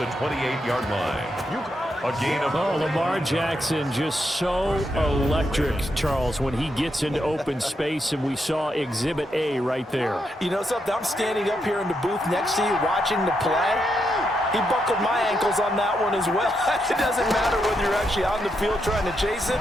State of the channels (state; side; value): normal; both; correlation 0.81